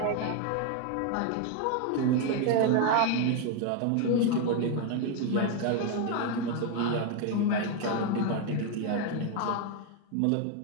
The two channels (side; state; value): both; different; correlation 0.01